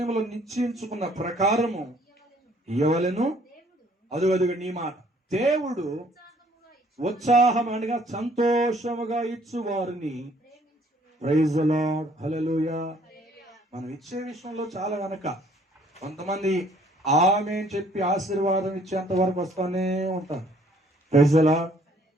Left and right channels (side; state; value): both; normal; correlation 0.61